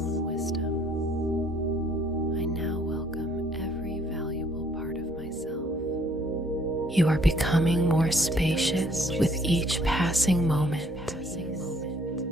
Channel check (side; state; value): both; normal; correlation 0.63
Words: wisdom. I now welcome every valuable part of myself. You are becoming more spacious with each passing moment.